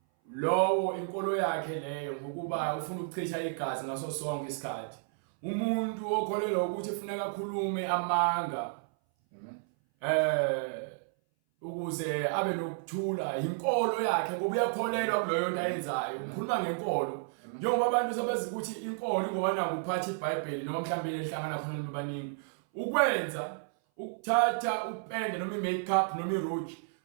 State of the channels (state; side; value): silent; left; 57 dB below the other